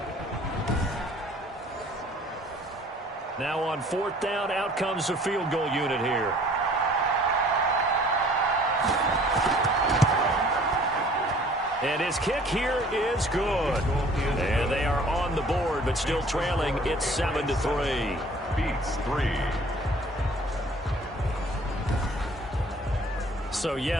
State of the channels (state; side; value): normal; both; correlation 0.53